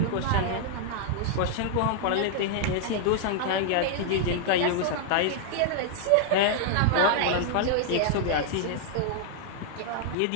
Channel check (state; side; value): different; both; correlation -0.01